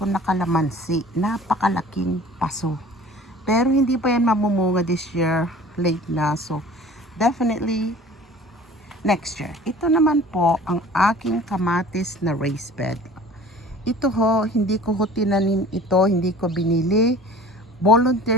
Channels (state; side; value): normal; both; correlation 0.46